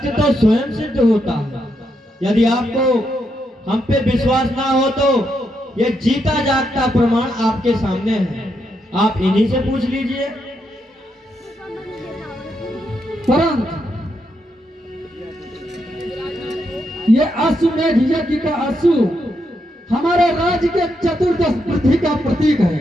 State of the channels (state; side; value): normal; both; correlation 0.81